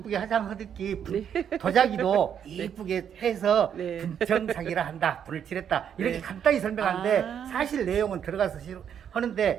화장하듯이 도자기도 이쁘게 해서 네. 분청사기라 한다. 불을 칠했다. 이렇게 네. 간단히 설명하는데 아. 사실 내용은 들어가서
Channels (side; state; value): left; quieter; 8.6 dB